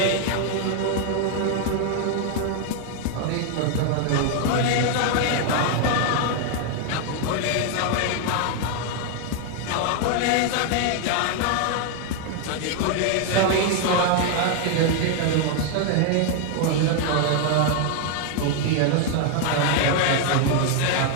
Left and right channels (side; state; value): both; different; correlation 0.00